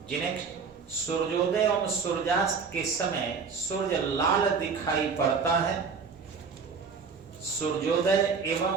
नेक्स्ट, सूर्योदय एवं सूर्यास्त के समय सूर्य लाल दिखाई पड़ता है, सूर्योदय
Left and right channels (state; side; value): quieter; left; 5.4 dB